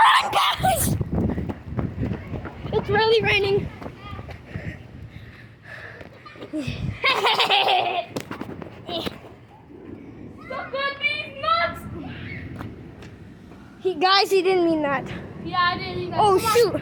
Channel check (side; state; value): both; identical; correlation 1.00